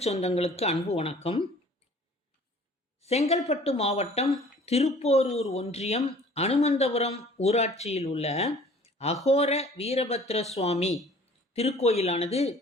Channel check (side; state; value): both; normal; correlation 0.50